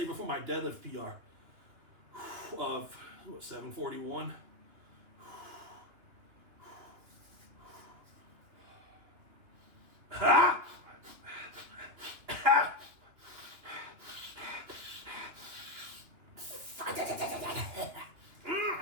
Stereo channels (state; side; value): late; left; 2.9 ms